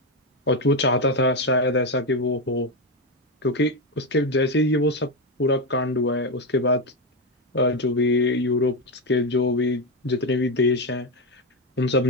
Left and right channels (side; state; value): both; normal; correlation 0.09